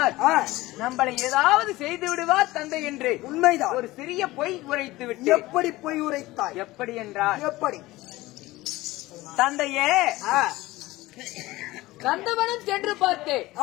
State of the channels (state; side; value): quieter; right; 18.7 dB